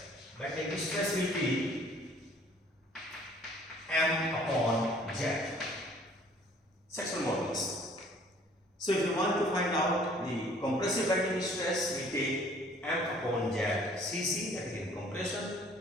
will be M upon Z, sectional modulus. So if you want to find out the compressive bending stress, we take M upon Z Cc, that is in compression.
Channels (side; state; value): both; normal; correlation 0.56